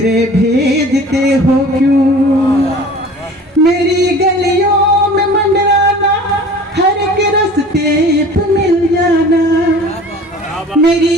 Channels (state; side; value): normal; both; correlation 0.43